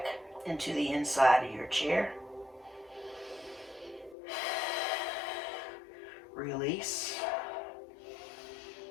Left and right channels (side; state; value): right; drops out; at 4.2 s